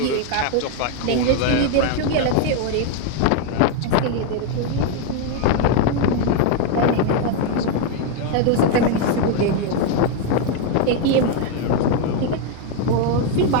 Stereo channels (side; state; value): both; different; correlation 0.01